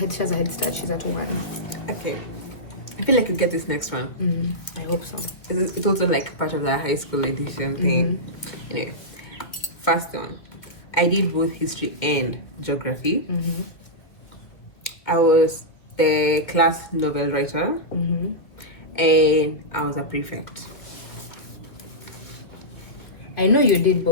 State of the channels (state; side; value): late; right; 2.1 ms